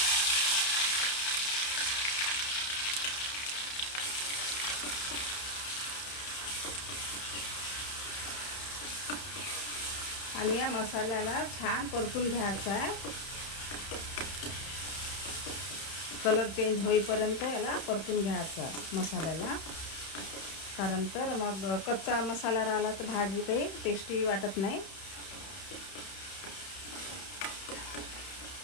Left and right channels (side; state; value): right; late; 31 ms